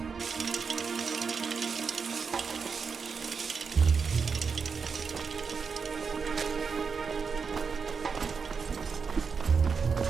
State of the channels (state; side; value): quieter; left; 5.6 dB